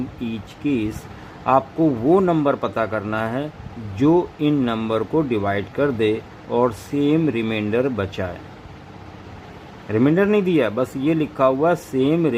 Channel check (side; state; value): both; identical; correlation 1.00